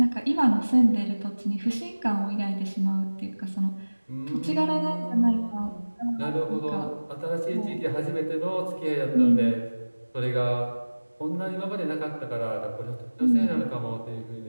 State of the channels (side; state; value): both; inverted; correlation -1.00